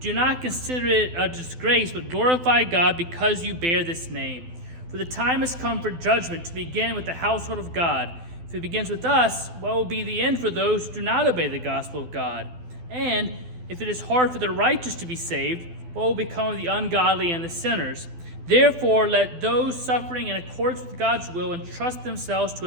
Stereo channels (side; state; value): left; late; 12 ms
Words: not consider it a disgrace, but glorify God because you bear this name. For the time has come for judgment to begin with the household of God. If it begins with us, what will be the end for those who do not obey the gospel of God? And if it is hard for the righteous to be saved, what will become of the ungodly and the sinners? Therefore, let those suffering in accordance with God's will entrust themselves to